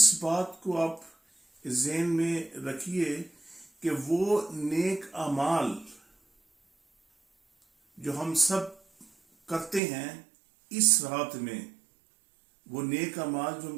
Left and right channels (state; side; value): drops out; left; at 9.8 s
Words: بات کو آپ ذہن میں رکھیے کہ وہ نیک اعمال جو ہم سب کرتے ہیں اس رات میں، وہ نیک اعمال جو